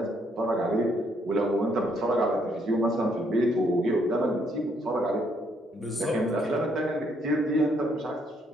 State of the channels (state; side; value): normal; both; correlation 0.70